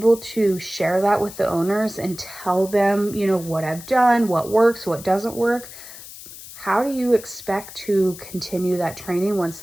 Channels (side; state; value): left; noise; hiss, 15 dB below the sound